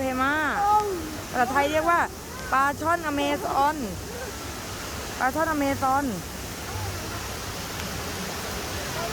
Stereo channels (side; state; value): both; identical; correlation 1.00